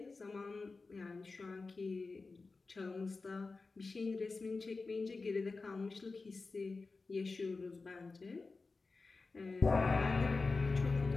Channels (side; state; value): right; quieter; 3.9 dB